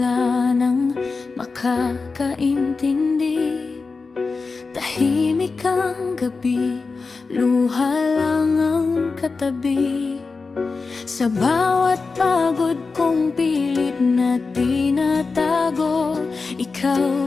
nang makakaintindi, tahimik ang gabi, luha lang ang katabi. Sa bawat pagod kong pilit na tinatago,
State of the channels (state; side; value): quieter; right; 4.3 dB